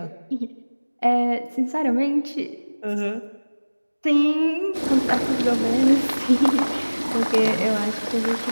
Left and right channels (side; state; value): both; inverted; correlation -1.00